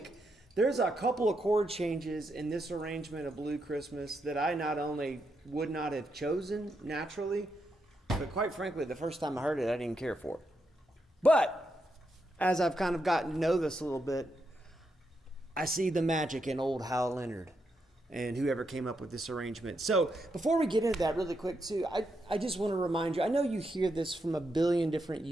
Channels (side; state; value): both; normal; correlation 0.82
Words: there's a couple of chord changes in this arrangement of Blue Christmas that I not only would not have chosen naturally, but quite frankly, the first time I heard it, I didn't care for it. But as I've kind of gotten to know this a little bit, I see the magic in old Hal Leonard and whoever came up with this arrangement. So before we get into that really quick too, I just want to remind you, I know you hear this from a billion different